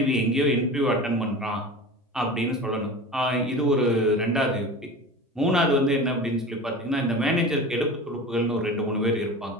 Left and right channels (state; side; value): normal; both; correlation 0.34